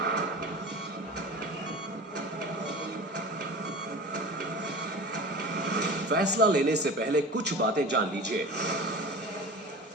फैसला लेने से पहले कुछ बातें जान लीजिए।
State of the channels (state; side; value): normal; both; correlation 0.36